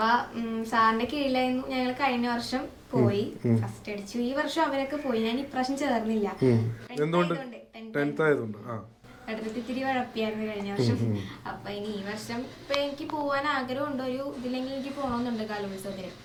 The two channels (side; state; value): both; identical; correlation 1.00